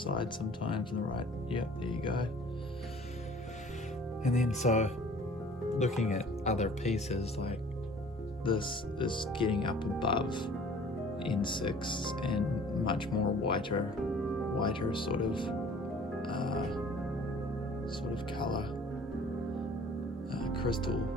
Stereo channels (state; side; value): normal; both; correlation 0.49